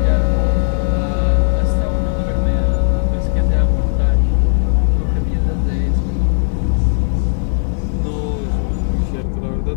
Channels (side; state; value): right; silent; 69 dB below the other